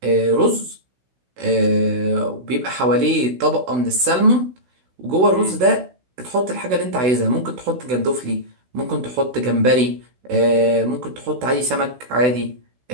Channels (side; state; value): left; late; 16 ms